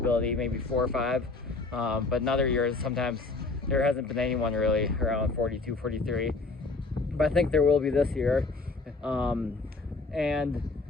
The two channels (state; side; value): quieter; right; 3.6 dB